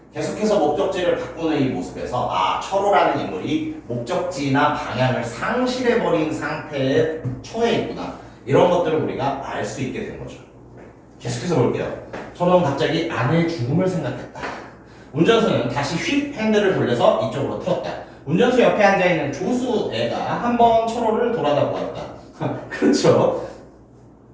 계속해서 목적지를 바꾸는 이 모습에서 철호라는 인물이 목적지나 방향을 상실해버린 상태에 처해 있구나. 이런 것들을 우리가 알 수 있게 된 거죠. 계속해서 볼게요. 철호는 갑자기 아내의 죽음을 생각했다. 운전수는 다시 휙 핸들을 돌려서 이쪽으로 틀었다. 운전수 옆에 앉아있는 조수 애가 한번 철호를 돌아다 보았다. 그렇죠.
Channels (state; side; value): identical; both; correlation 1.00